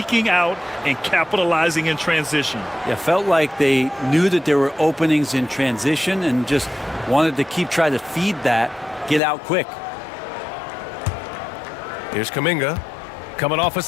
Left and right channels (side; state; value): right; drops out; at 9.2 s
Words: out and capitalizing in transition. Yeah, felt like they knew that there were openings in transition and just wanted to keep trying to feed that, get out quick. Here's Kuminga, coming off a